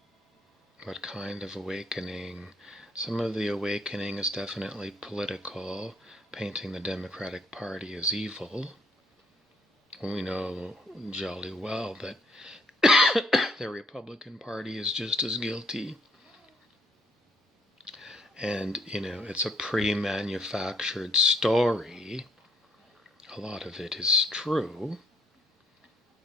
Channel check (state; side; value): normal; both; correlation 0.66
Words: What kind of awakening? Some of the awakening is definitely political, painting the Democratic Party as evil. We know jolly well that the Republican Party is just as guilty. And, it's a pre-manufactured story. A lot of it is true.